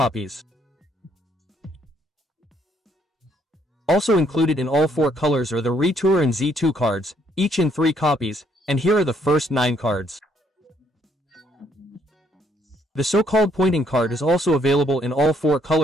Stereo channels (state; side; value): normal; both; correlation 0.69